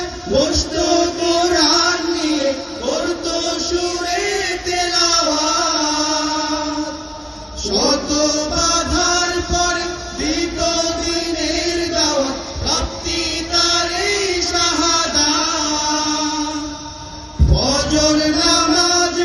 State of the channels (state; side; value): identical; both; correlation 1.00